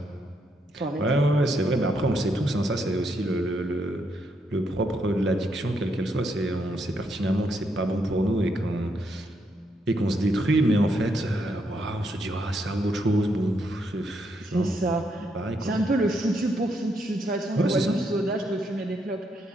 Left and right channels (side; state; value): both; normal; correlation 0.77